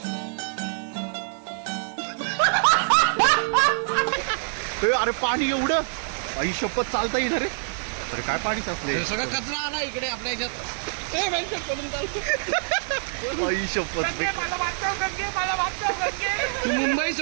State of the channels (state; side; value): silent; left; digital silence